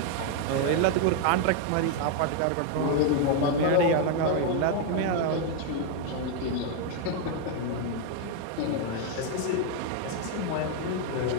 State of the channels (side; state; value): both; different; correlation 0.01